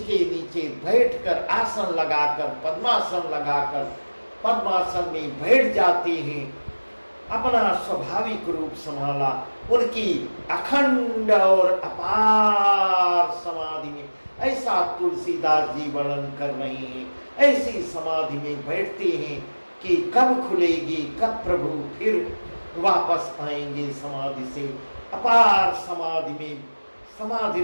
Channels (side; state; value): both; inverted; correlation -1.00